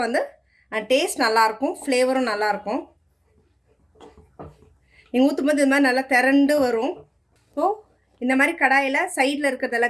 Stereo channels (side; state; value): both; identical; correlation 1.00